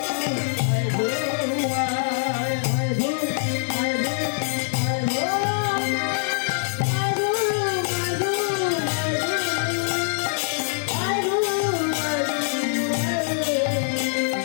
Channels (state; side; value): silent; right; digital silence